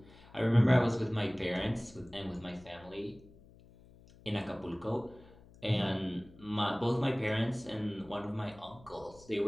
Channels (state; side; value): noise; left; hum, 23 dB below the sound